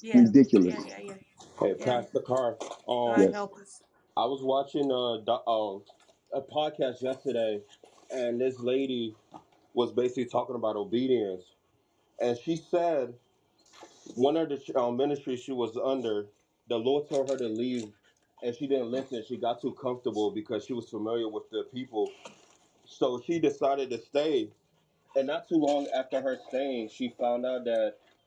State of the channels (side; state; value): both; identical; correlation 1.00